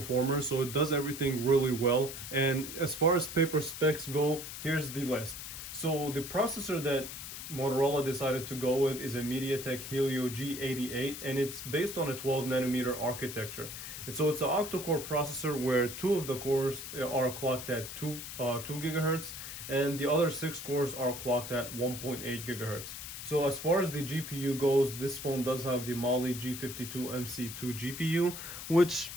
so it does everything really well. And as far as paper specs go, here's the list. So the processor that Motorola decided to go with is a MediaTek Helio G88, and it's based on a 12 nanometer architecture. And so it's an octa-core processor where two of the cores are clocked at 2 gigahertz, and the other 6 cores are clocked at 1.8 gigahertz. So as far as the GPU goes, this phone does have the Mali G52MC2 GPU, which,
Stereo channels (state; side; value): noise; left; hiss, 9 dB below the sound